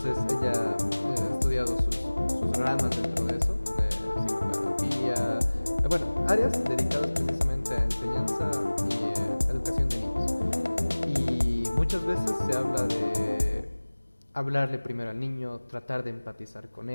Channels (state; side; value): inverted; both; correlation -1.00